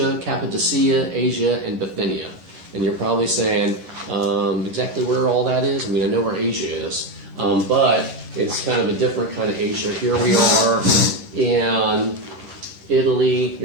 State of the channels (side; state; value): left; late; 11 ms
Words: Cappadocia, Asia, and Bithynia. And you're probably saying, exactly where all that is? I mean, I know where Asia is, but it's kind of a different kind of Asia. Here we are in Italy.